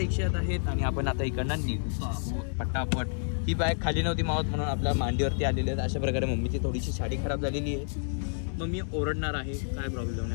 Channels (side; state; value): right; silent; 58 dB below the other